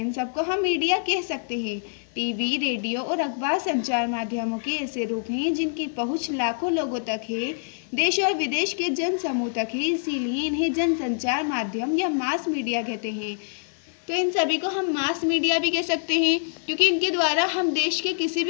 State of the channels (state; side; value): silent; right; digital silence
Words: इन सबको हम मीडिया कह सकते हैं। टीवी, रेडियो और अखबार संचार माध्यमों के ऐसे रूप हैं जिनकी पहुंच लाखों लोगों तक है, देश और विदेश के जन समूह तक है, इसीलिए इन्हें जनसंचार माध्यम या मास मीडिया कहते हैं। तो इन सभी को हम मास मीडिया भी कह सकते हैं, क्योंकि इनके द्वारा हम देश के किसी